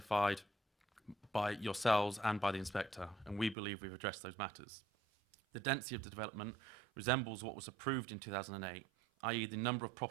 by yourselves and by the inspector, and we believe we've addressed those matters. The density of the development resembles what was approved in 2008, i.e. the number of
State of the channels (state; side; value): drops out; left; at 3.6 s